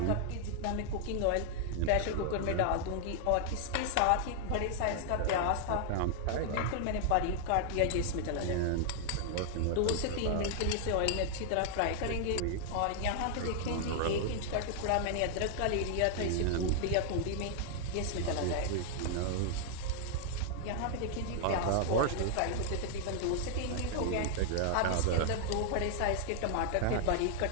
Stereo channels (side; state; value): both; different; correlation 0.00